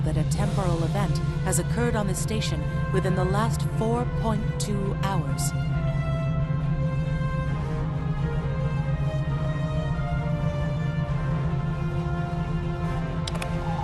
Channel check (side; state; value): both; identical; correlation 1.00